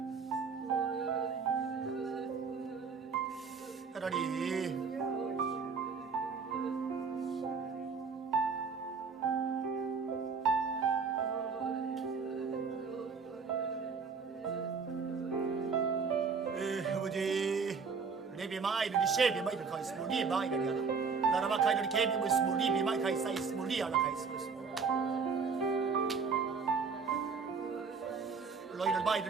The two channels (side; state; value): left; quieter; 5.3 dB